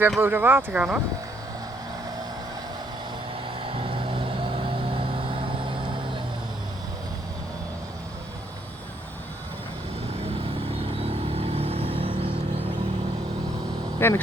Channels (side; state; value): both; normal; correlation 0.70